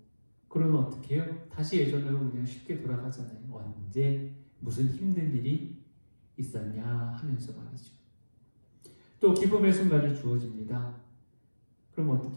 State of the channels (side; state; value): both; inverted; correlation -1.00